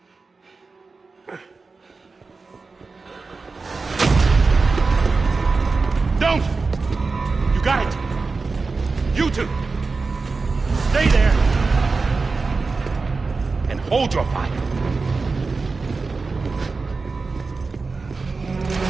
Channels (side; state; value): left; quieter; 4.1 dB